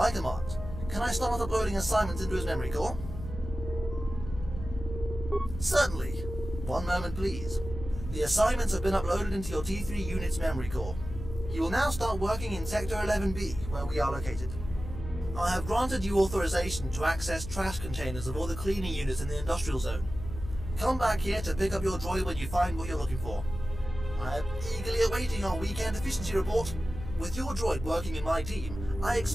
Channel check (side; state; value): left; noise; hum, 9 dB below the sound